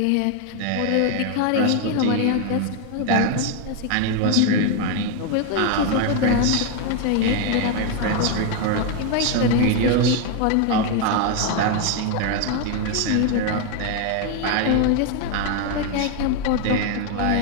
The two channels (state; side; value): different; both; correlation 0.01